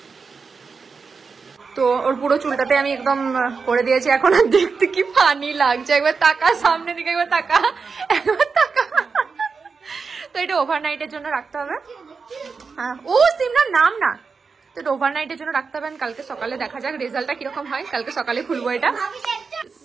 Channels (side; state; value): left; quieter; 5.0 dB